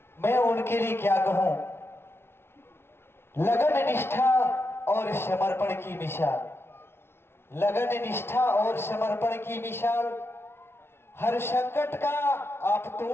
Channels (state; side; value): late; right; 0.12 ms